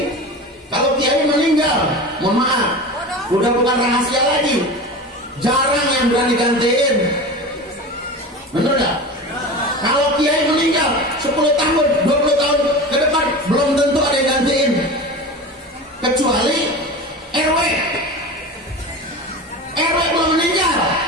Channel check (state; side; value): normal; both; correlation 0.30